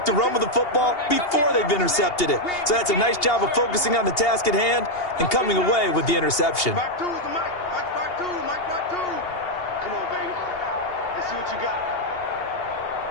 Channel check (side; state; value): right; late; 2.8 ms